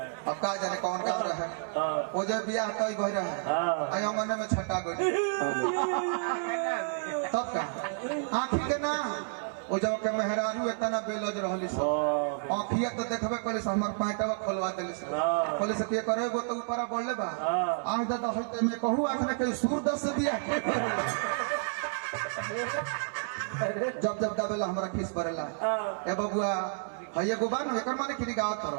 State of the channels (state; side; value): silent; left; 58 dB below the other